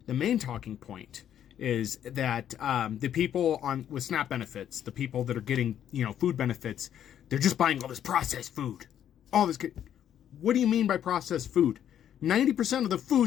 the main talking point is that the people with SNAP benefits, the people that are getting food benefits, they're just buying all this processed food, all this. What do you mean by processed food? 90% of the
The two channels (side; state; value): right; quieter; 10.1 dB